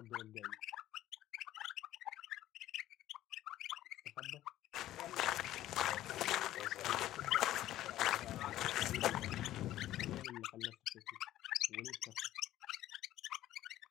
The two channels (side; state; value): right; quieter; 13.8 dB